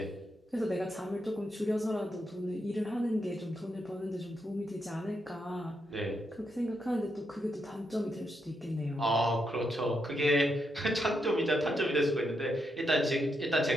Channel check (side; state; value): both; normal; correlation 0.81